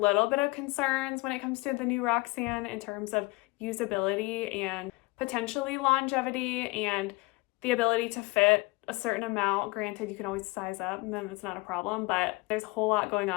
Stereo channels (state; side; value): quieter; right; 23.8 dB